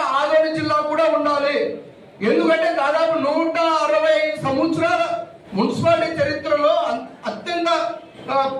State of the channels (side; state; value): both; identical; correlation 1.00